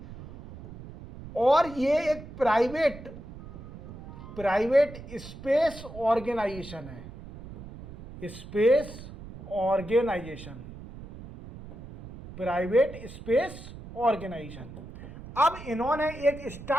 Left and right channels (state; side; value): noise; right; rumble, 14 dB below the sound